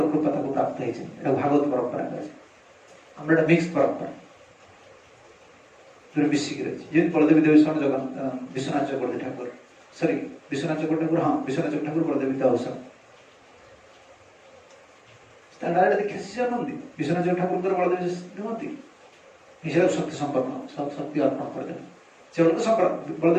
प्राप्त है भागवत परंपरा आम मिक्स परंपरा जो मिसिक रही बलदेवी देवस्वान जगन विश्वनाथ चक्रवर्ती ठाकुर सॉरी विश्वनाथ चक्रवर्ती ठाकुर हाँ विश्वनाथ चक्रवर्ती ठाकुर बलदेवी देवस्वान डायरेक्ट देखिए शिष्य नुहति विश्वनाथ ठाकुर बलदेव नुहति निश्चय शक्ति संपन्न शक्ति अर्पण कर से अलग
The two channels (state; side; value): identical; both; correlation 1.00